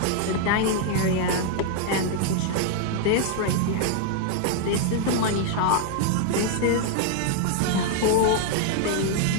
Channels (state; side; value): different; both; correlation 0.00